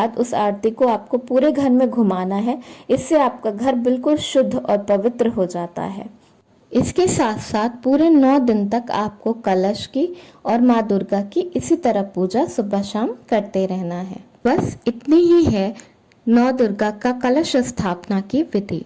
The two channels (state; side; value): identical; both; correlation 1.00